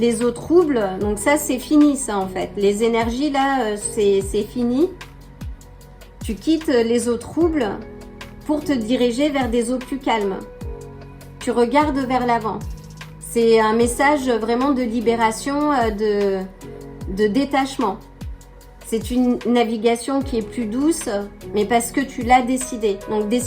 eaux troubles, donc ça c'est fini ça en fait. Les énergies là c'est fini. Tu quittes les eaux troubles pour te diriger vers des eaux plus calmes. Tu regardes vers l'avant. C'est un message vraiment de libération, de détachement. C'est une navigation qui est plus douce, mais parce que tu l'as décidé. Donc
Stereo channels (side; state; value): both; identical; correlation 1.00